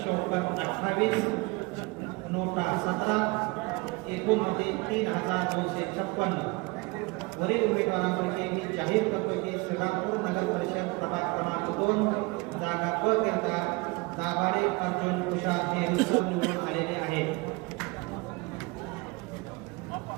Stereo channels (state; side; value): quieter; left; 25.6 dB